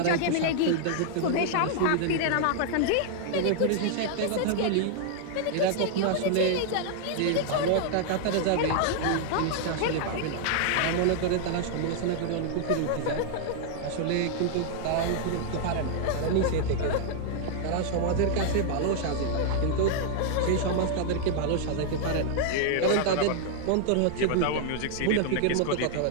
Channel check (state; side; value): different; both; correlation -0.01